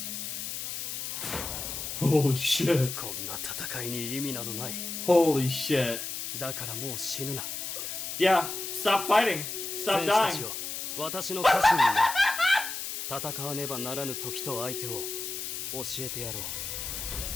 Holy shit. こんな戦いに意味などない。 Holy shit. だからもう死ぬな。 Yeah, stop fighting. Stop dying. 私の家臣になる。戦わねばならぬ時と相手を教えてやろう。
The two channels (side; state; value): left; noise; hiss, 5 dB below the sound